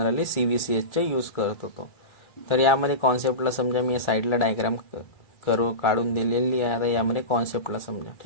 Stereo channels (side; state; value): right; late; 2.4 ms